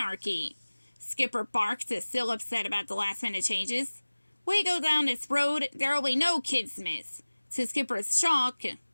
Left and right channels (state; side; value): inverted; both; correlation -1.00